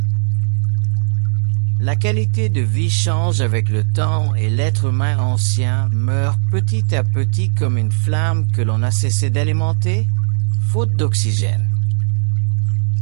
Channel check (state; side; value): silent; left; digital silence